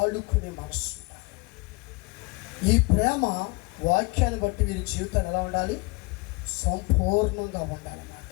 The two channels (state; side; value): quieter; right; 27.7 dB